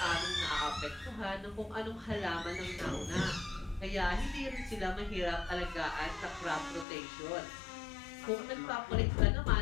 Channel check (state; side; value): drops out; right; at 6.9 s